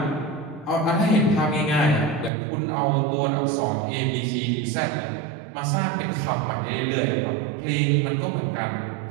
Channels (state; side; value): drops out; left; at 2.3 s